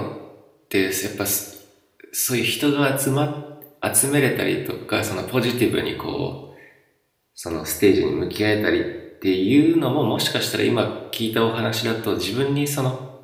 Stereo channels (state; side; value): identical; both; correlation 1.00